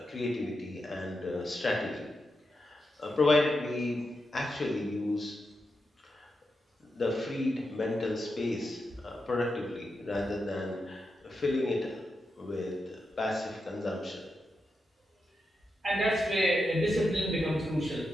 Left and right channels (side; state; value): both; normal; correlation 0.87